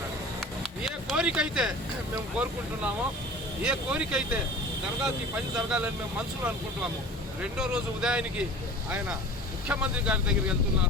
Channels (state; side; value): normal; both; correlation 0.40